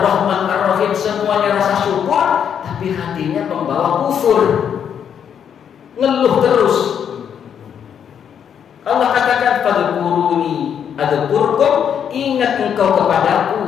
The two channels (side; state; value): right; quieter; 8.2 dB